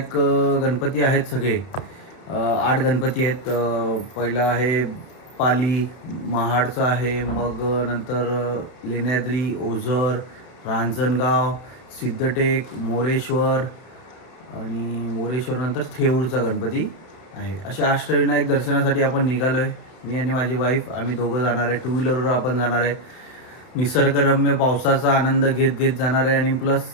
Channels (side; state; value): right; late; 31 ms